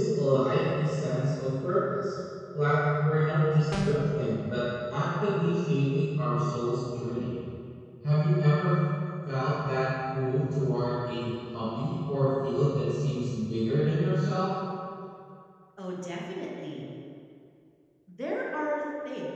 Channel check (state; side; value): identical; both; correlation 1.00